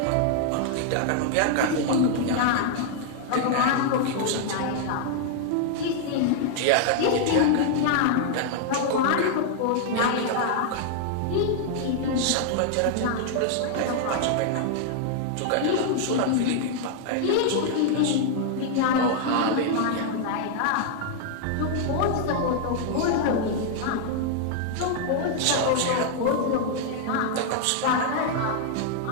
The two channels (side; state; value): both; different; correlation 0.00